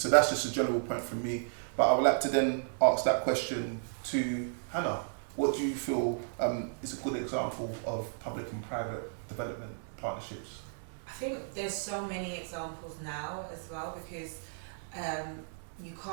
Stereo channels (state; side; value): silent; left; digital silence